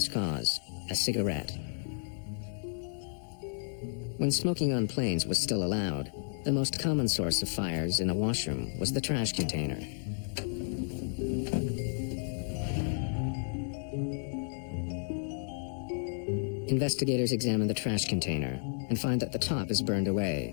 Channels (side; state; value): right; silent; digital silence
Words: cause, a cigarette. When smoking on planes was still allowed, the most common source of fires in a washroom was the trash container. Investigators examine the trash container and find that the top is burned